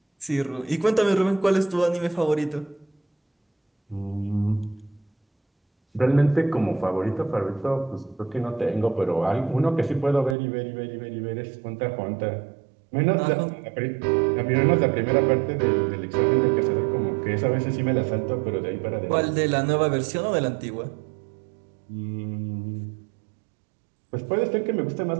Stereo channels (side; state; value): left; drops out; at 10.4 s